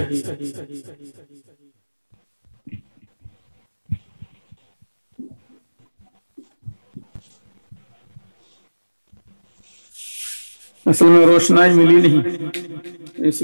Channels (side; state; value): both; inverted; correlation -1.00